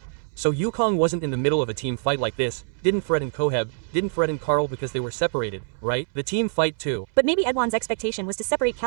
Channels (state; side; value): silent; left; 62 dB below the other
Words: So Yukong wasn't in the middle of a team fight like this, didn't threaten Koheb, didn't threaten Carl because they were separated, right? The team fight too. But maybe Edwan's expectation was to separate